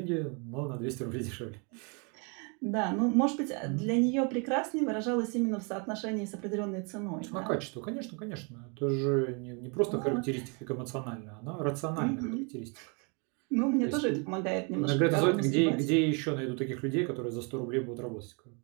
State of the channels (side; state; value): left; quieter; 34.2 dB